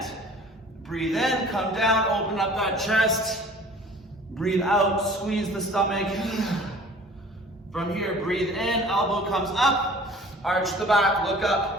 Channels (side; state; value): both; normal; correlation 0.48